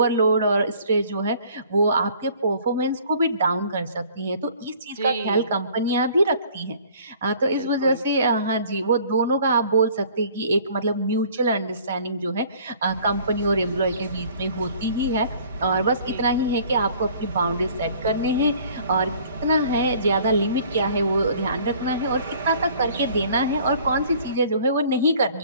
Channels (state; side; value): inverted; both; correlation -0.53